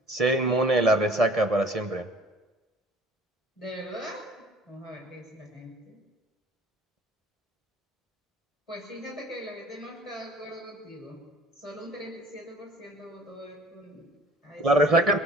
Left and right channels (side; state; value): both; normal; correlation 0.50